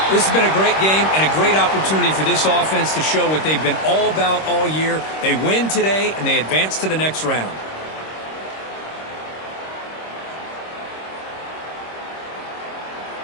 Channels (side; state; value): right; late; 26 ms